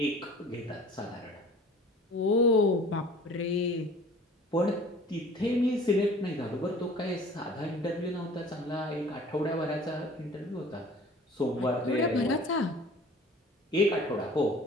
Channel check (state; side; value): normal; both; correlation 0.46